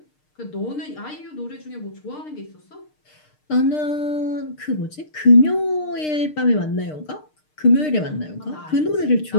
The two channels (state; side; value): late; right; 6.6 ms